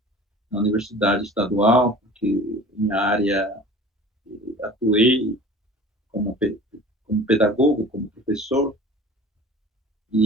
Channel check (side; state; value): both; normal; correlation 0.42